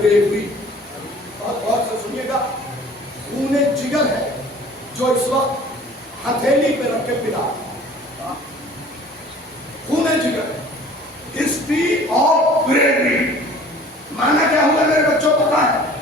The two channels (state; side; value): normal; both; correlation 0.48